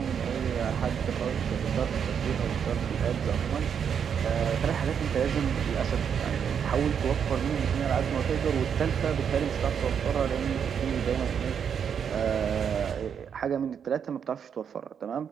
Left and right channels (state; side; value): quieter; left; 7.6 dB